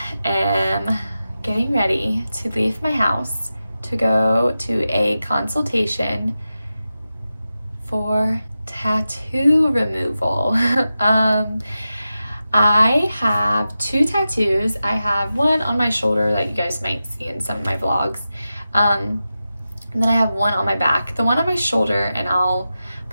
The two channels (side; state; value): both; inverted; correlation -0.92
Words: am getting ready to leave my house to go to a consultation for tattoo removal. I have two tattoos. I have one on my shoulder that you guys might see in some of my vlogs. And then I have one on my back. The one on my shoulder, and I'll